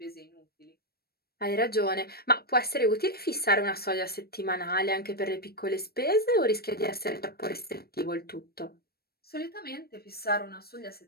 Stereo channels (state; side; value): late; right; 0.45 ms